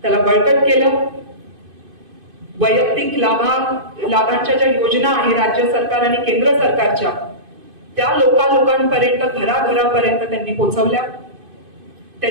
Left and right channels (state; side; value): late; left; 2.5 ms